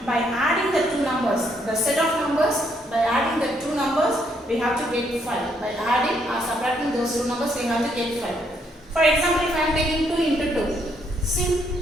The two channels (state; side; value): normal; both; correlation 0.72